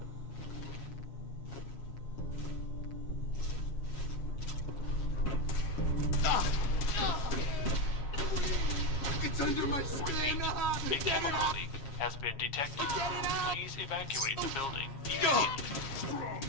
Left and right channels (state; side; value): late; right; 7.3 ms